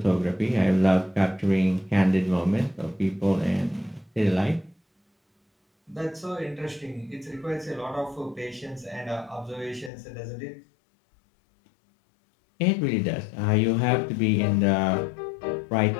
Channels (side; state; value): right; drops out; at 9.9 s